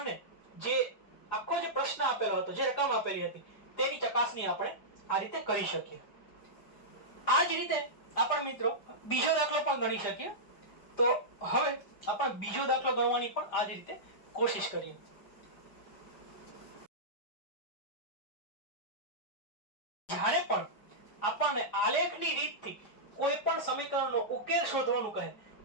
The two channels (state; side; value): late; right; 5.1 ms